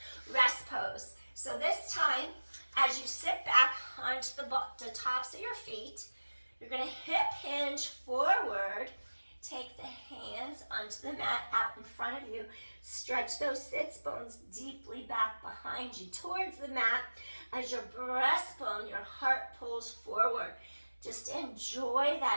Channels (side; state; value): both; inverted; correlation -1.00